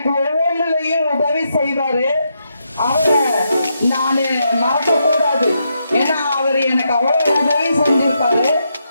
ஒவ்வொன்றுலையும் உதவி செய்வாரு. அவரை நானு மறக்க கூடாது. ஏன்னா அவரு எனக்கு அவ்வளவு உதவி செஞ்சிருப்பாரு.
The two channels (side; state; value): both; inverted; correlation -0.81